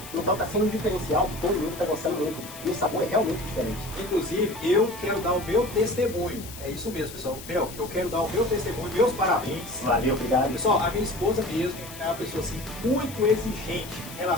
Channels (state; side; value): noise; left; hiss, 14 dB below the sound